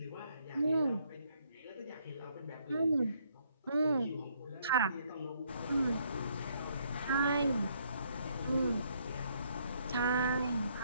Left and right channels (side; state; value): both; inverted; correlation -0.70